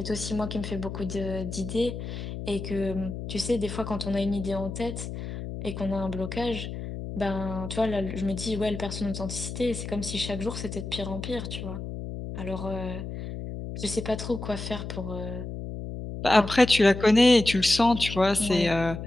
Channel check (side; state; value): left; noise; hum, 7 dB below the sound